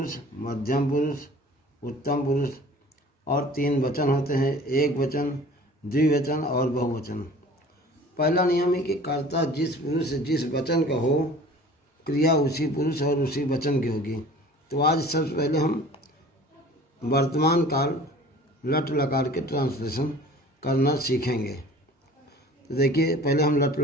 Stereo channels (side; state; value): both; normal; correlation 0.46